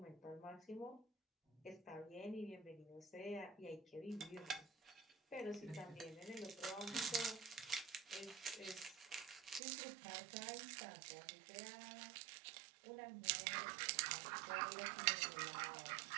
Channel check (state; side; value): drops out; left; at 9.6 s